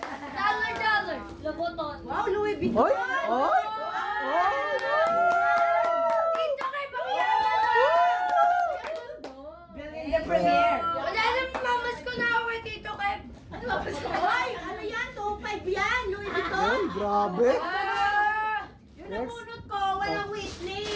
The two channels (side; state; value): both; identical; correlation 1.00